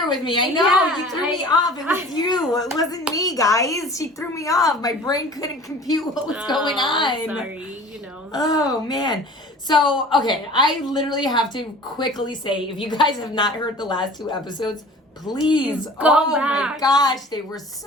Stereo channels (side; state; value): both; normal; correlation 0.44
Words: with me. I know, Yeah, you threw me off. It was you. It wasn't me, guys. She threw me off. My brain couldn't compute what was going on. Sorry, Oh, man. So, okay, I literally have to quickly say, if you guys have not heard the last 2 episodes, please Go my back. gosh, they were